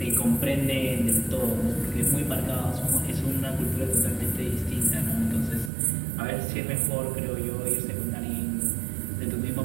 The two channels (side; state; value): left; drops out; at 5.7 s